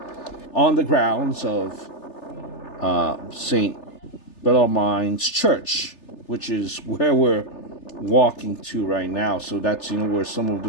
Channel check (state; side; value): late; right; 3.3 ms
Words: on the grounds of St. Bellarmine's Church, which is where we're walking to right now. So that's where some of the